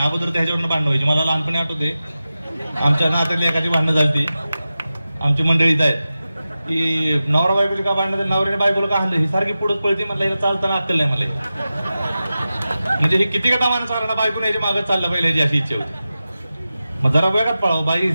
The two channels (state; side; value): inverted; both; correlation -0.94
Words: अगोदर त्याच्यावरनं भांडणं व्हायची. मला लहानपणी आठवते, आमच्या नात्यातली एखादी भांडणं झाली, आमची मंडळीत आहेत की नवरा बायकोची का भांडणं, नवऱ्याने बायकोला का हाणलं, ही सारखी पुढे पळते. म्हणलं हिला चालताना अक्कल नाही. म्हणजे हे किती का दामानं चालणार, बायकोने याच्या मागे चाललं पाहिजे याची अशी इच्छा होती. मग जरा वेगात पळावं.